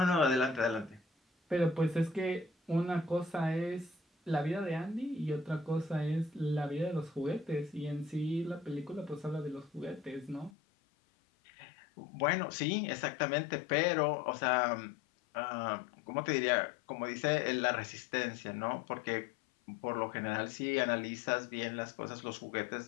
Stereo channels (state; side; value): drops out; right; at 10.5 s